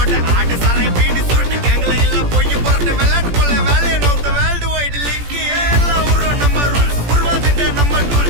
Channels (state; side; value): late; left; 17 ms